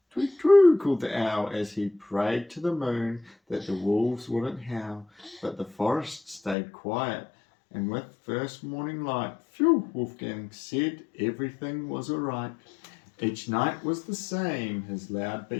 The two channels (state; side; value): drops out; right; at 6.6 s